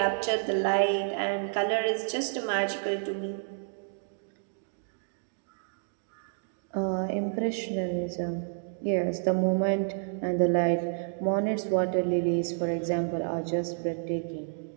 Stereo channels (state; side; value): silent; left; digital silence